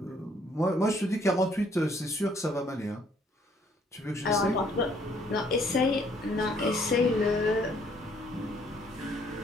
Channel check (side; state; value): both; normal; correlation 0.65